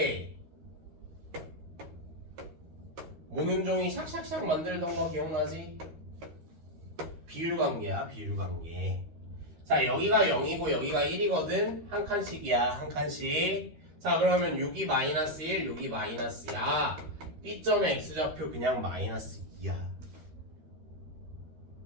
모눈종이 샥샥샥 만들던 거 기억나지? 비율관계야. 비율관계. 자 여기가 0이고 여기가 1이거든. 한 칸씩이야. 한 칸씩. 자 그러면 여기 마이너스 1 여기 마이너스야. B점의 X좌표 그냥 마이너스 2야.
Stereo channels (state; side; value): late; left; 13 ms